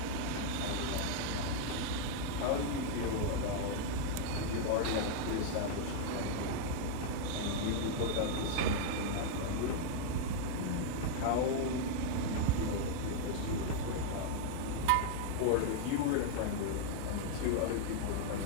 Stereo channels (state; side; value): different; both; correlation -0.01